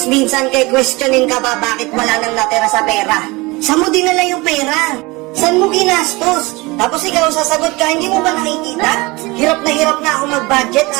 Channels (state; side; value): quieter; left; 23.8 dB